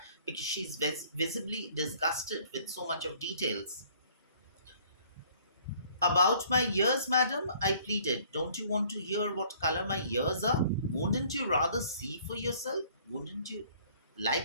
because she's visibly disgusted with so much of details. About my ears, madam, I pleaded. Don't you want to hear what color my ears are? Wouldn't you rather see for yourself? Wouldn't you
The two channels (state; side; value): inverted; both; correlation -0.57